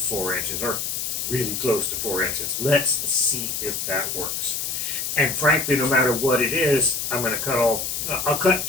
inches, or really close to 4 inches. Let's see if that works. And frankly, no matter what it is, I'm going to cut off. I'll cut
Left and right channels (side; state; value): left; noise; hiss, 2 dB below the sound